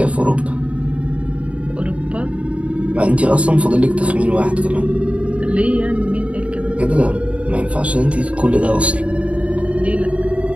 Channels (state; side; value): late; left; 0.063 ms